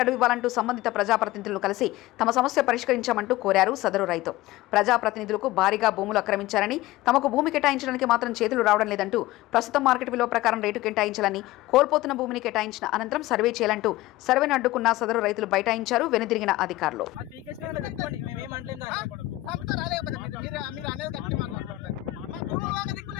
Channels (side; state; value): right; quieter; 17.6 dB